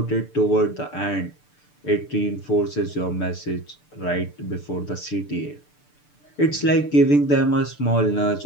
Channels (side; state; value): right; late; 6.8 ms